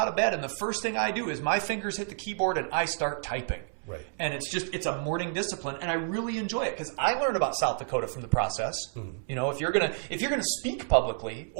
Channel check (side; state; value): left; silent; digital silence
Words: of bed and the first thing I do is my fingers hit the keyboard and I start typing. Right. And it's a morning discipline, and I really enjoy it because I learned about South Dakota from the process. Mm-hmm. You know, if you're gonna speak publicly